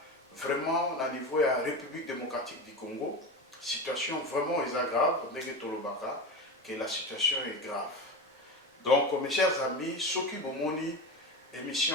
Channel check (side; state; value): both; normal; correlation 0.24